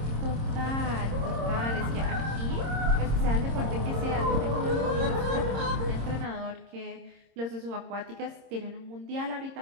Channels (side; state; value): left; late; 26 ms